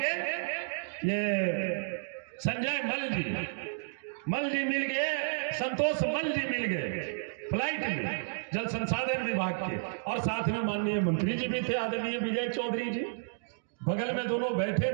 ये संजय मल जी मिल गए, संतोष मल जी मिल गए फ्लाइट में जल संसाधन विभाग के, और साथ में माननीय मंत्री जी भी थे, आदरणीय विजय चौधरी जी बगल में दोनों बैठे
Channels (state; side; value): silent; left; digital silence